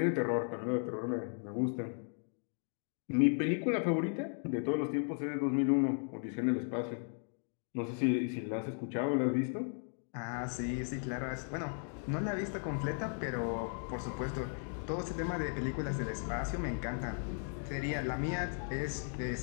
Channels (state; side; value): silent; right; 54 dB below the other